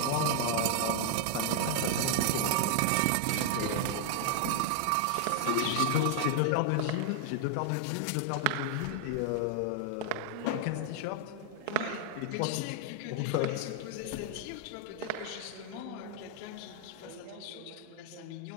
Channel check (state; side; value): different; both; correlation 0.00